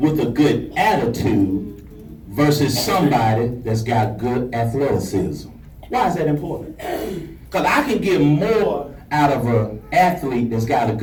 a good attitude versus somebody that's got good athleticism. Why is that important? Because I can get more out of an athlete that's got a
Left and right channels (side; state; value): both; identical; correlation 1.00